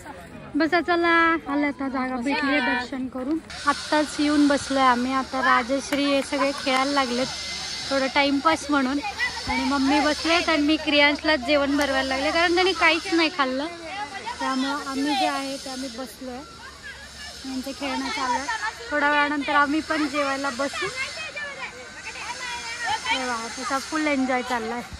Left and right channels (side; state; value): both; identical; correlation 1.00